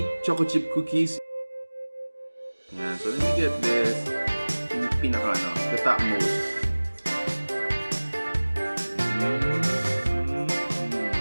choco chip cookies. Yeah, so let me get this. Yung pinaka the top most.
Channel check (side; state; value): both; inverted; correlation -1.00